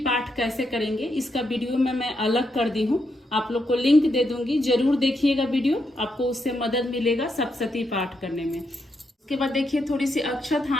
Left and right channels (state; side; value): normal; both; correlation 0.81